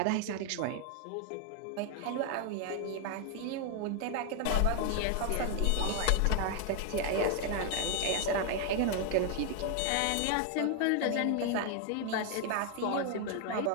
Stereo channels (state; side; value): different; both; correlation 0.01